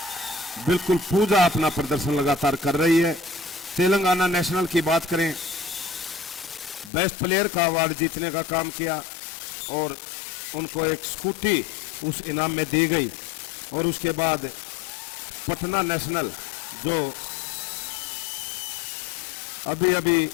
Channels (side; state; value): right; drops out; at 6.9 s